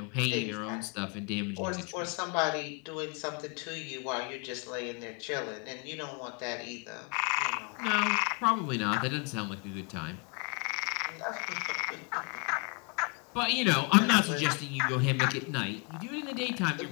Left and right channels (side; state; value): right; quieter; 32.9 dB